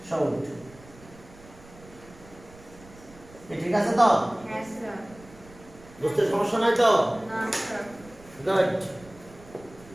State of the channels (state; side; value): noise; right; rumble, 22 dB below the sound